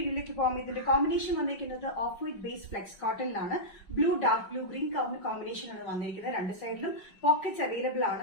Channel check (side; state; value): right; late; 5.3 ms